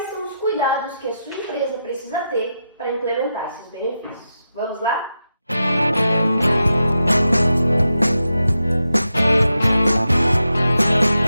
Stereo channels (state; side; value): inverted; both; correlation -0.87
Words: são os cuidados que a sua empresa precisa ter para implementar esses benefícios. Vamos lá?